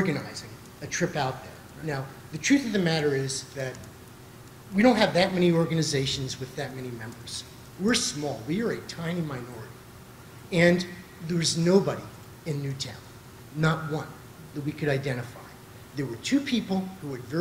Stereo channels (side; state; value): both; identical; correlation 1.00